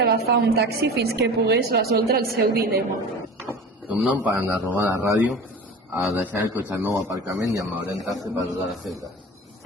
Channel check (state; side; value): normal; both; correlation 0.36